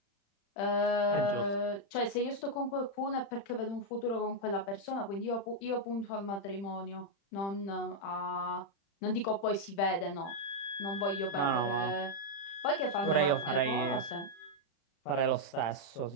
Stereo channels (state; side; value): late; right; 35 ms